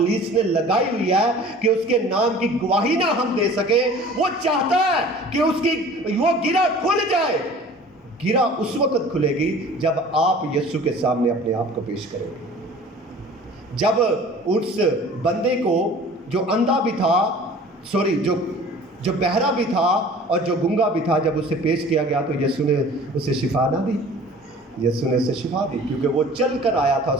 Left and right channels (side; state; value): both; normal; correlation 0.45